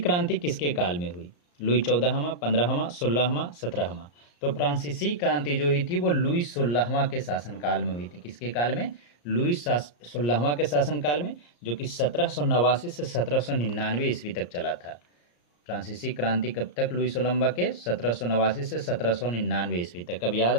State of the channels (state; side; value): late; right; 34 ms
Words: किसके काल में हुई? लुई 14वां, 15वां, 16वां, 17वां। तो फ्रांसीसी क्रांति जो हुई थी वो लुई 16वां के शासनकाल में हुई थी। किसके काल में? लुई 16वां के शासनकाल में, जो कि 1789 से 1799 ईस्वी तक चला था। फ्रांसीसी क्रांति कब तक? लुई 16वां के 1789 से 1799 ईस्वी तक। अब याद